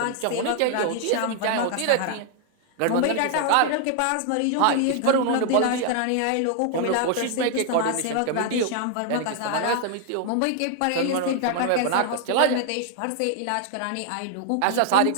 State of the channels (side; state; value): both; different; correlation 0.00